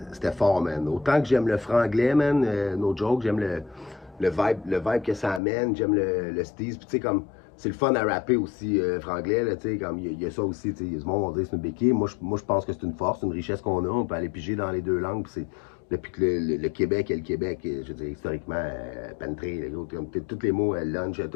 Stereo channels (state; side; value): drops out; right; at 5.4 s